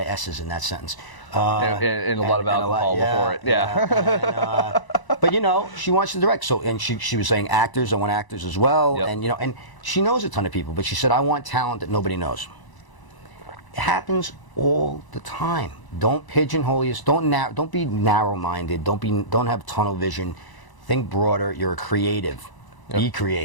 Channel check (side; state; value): right; late; 1.0 ms